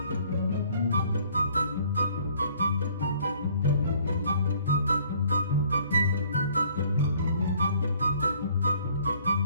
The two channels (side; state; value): both; inverted; correlation -0.58